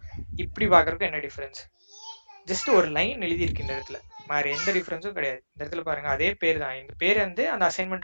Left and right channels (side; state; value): both; inverted; correlation -1.00